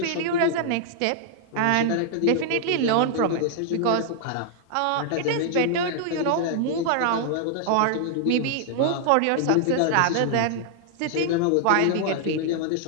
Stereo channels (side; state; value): both; different; correlation -0.01